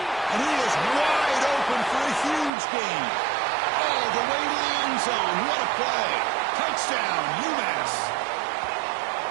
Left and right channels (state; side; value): drops out; left; at 2.5 s